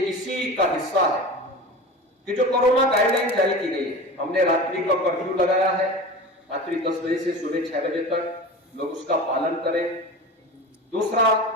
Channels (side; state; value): both; normal; correlation 0.32